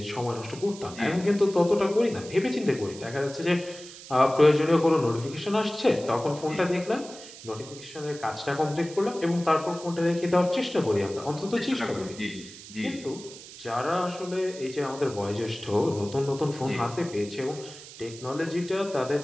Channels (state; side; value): noise; right; hiss, 16 dB below the sound